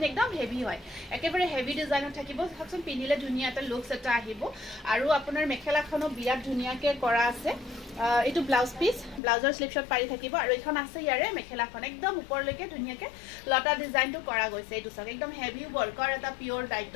একদম হেভি হয় একেবাৰে হেভি ডিজাইনত থাকিব চাওকচোন পিন্ধিলে ধুনীয়া এটা লুকস এটা আহিব আৰু আপোনাৰ মেখেলাখনো বিৰাট ধুনীয়াকৈ কৰা আছে এইটো ব্লাউজ পিস ব্লাউজৰ স্লিপ শট পাৰি থাকিব আৰু এখন আছে ইয়াৰে মেখেলাখন একদম ওপৰলৈকে ধুনীয়াকৈ লতা ডিজাইনটো কৰা গৈছে এইটো চাওক একদম হেভি ওয়াৰ্কৰ এটা পিওৰ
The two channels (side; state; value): right; drops out; at 9.2 s